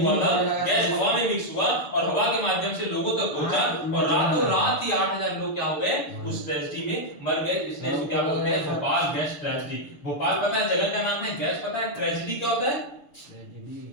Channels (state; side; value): late; right; 6.8 ms